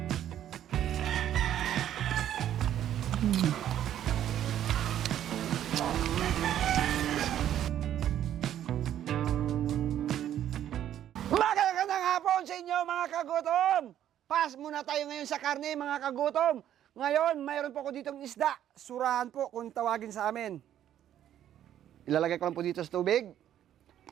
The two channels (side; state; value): left; quieter; 11.1 dB